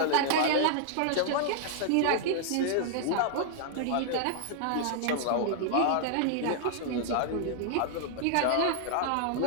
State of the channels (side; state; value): both; different; correlation -0.01